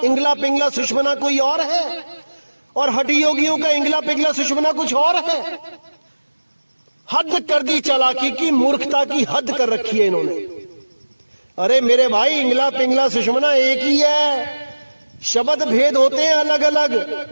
इंगला पिंगला सुषमना कोई और है और हठी योगियों का इंगला पिंगला सुषमना कुछ और है। हद कर दी चालाकी की, मूर्खता की हद कर रखी है इन्होंने। अरे मेरे भाई, इंगला पिंगला सुषमना एक ही है, शब्द भेद होते हैं अलग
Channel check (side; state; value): both; inverted; correlation -1.00